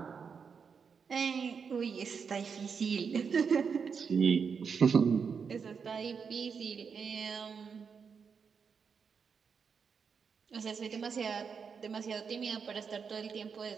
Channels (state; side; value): quieter; left; 6.1 dB